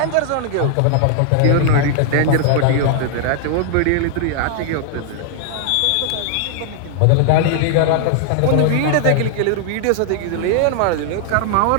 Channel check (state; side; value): different; both; correlation 0.00